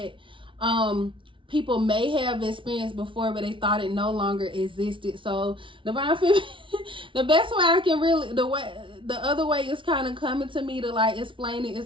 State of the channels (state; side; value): late; left; 0.25 ms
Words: people may have experienced before, but they thought it no longer existed. So Divine Feminine, the best way I can really, the other way is kind of coming to me to like explain it,